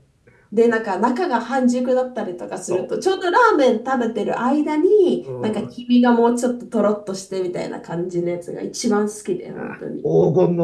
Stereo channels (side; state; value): both; identical; correlation 1.00